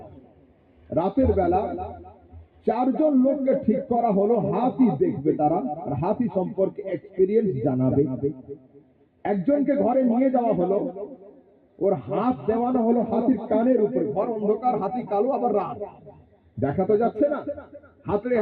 রাতের বেলা 4 জন লোককে ঠিক করা হলো, হাতি দেখবে তারা, আর হাতি সম্পর্কে এক্সপেরিয়েন্স জানাবে। একজনকে ঘরে নিয়ে যাওয়া হলো, ওর হাত দেওয়ানো হলো হাতির কানের উপরে। ঘর অন্ধকার, হাতি কালো, আবার রাত, দেখা তো যাচ্ছে না। হাতড়ে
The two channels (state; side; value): identical; both; correlation 1.00